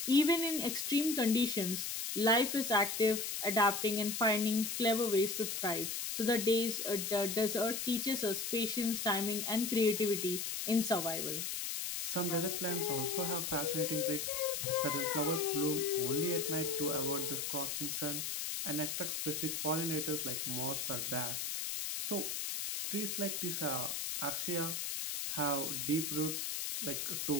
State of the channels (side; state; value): left; noise; hiss, 3 dB below the sound